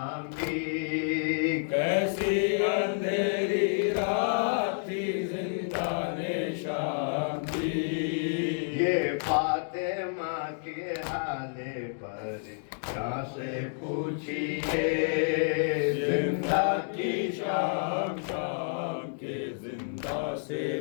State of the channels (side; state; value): right; silent; digital silence